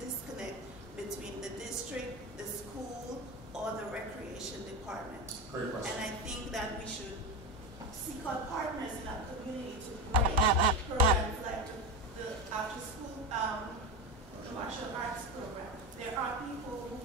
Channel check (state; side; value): normal; both; correlation 0.19